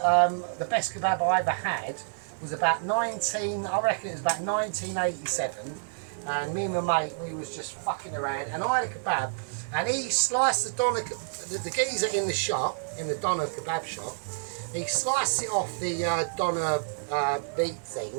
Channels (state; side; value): silent; left; 59 dB below the other